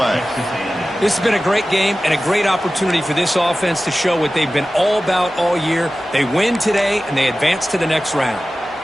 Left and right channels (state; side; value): normal; both; correlation 0.95